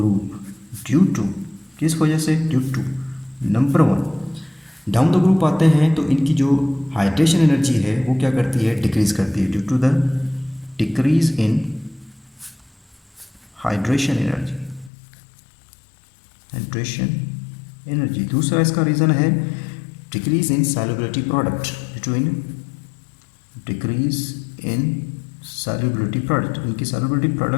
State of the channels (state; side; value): drops out; right; at 14.9 s